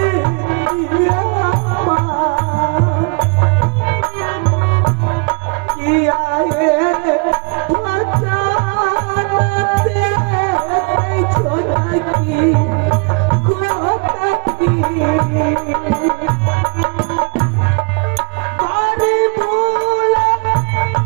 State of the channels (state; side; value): quieter; left; 34.0 dB